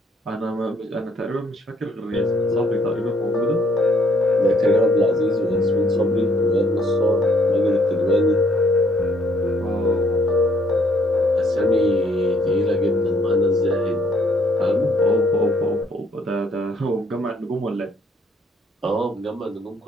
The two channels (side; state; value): both; normal; correlation 0.66